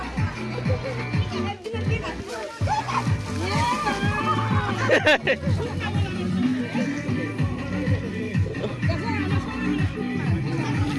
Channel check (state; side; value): identical; both; correlation 1.00